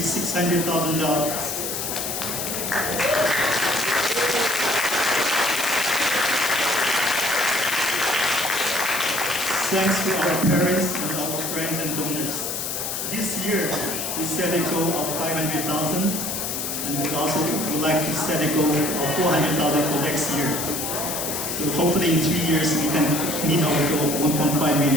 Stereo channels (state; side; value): noise; left; hiss, 3 dB below the sound